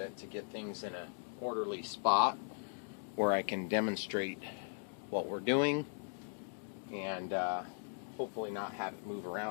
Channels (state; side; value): silent; right; digital silence